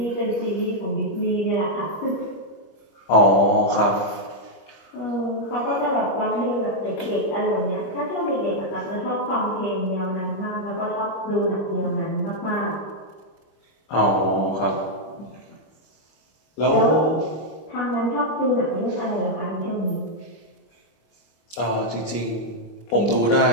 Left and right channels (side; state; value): right; late; 25 ms